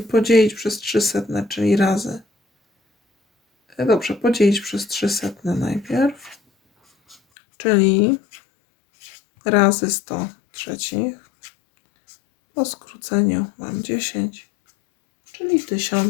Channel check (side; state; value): right; drops out; at 7.2 s